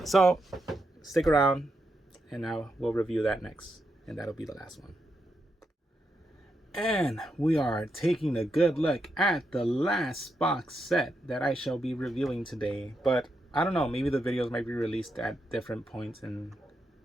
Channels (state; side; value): normal; both; correlation 0.83